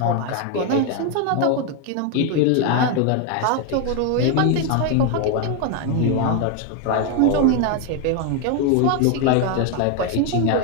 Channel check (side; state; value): both; different; correlation 0.01